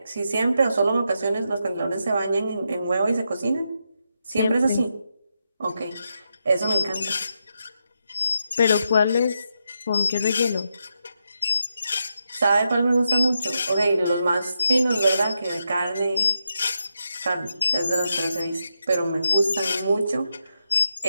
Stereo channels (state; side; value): inverted; both; correlation -0.84